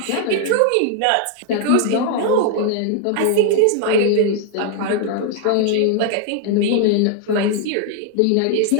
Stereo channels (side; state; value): both; different; correlation 0.00